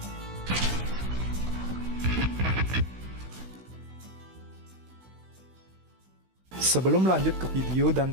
Sebelum lanjut ke video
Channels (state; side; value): late; left; 16 ms